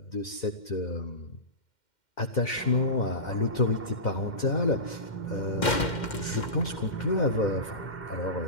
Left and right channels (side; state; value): right; late; 2.1 ms